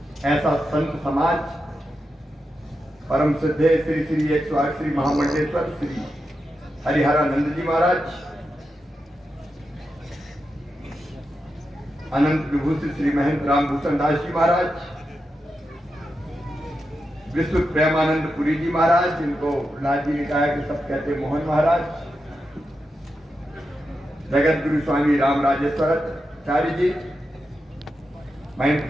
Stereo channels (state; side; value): normal; both; correlation 0.88